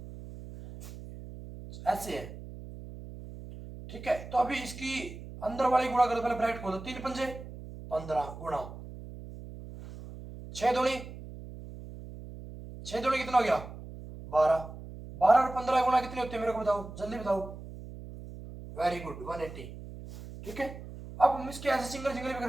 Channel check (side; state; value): right; noise; hum, 13 dB below the sound